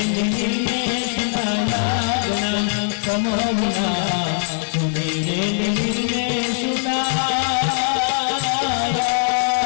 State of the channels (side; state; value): right; silent; 65 dB below the other